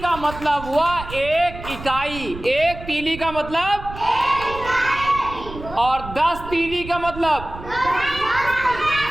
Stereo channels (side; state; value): right; noise; rumble, 12 dB below the sound